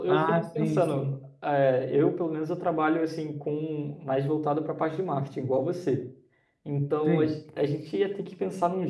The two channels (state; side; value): identical; both; correlation 1.00